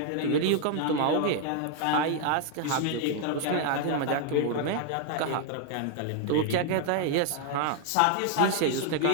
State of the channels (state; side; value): different; both; correlation 0.00